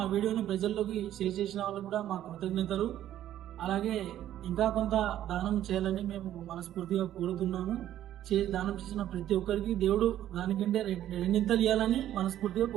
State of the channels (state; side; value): quieter; left; 12.1 dB